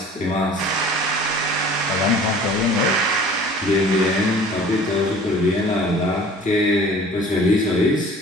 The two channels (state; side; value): normal; both; correlation 0.47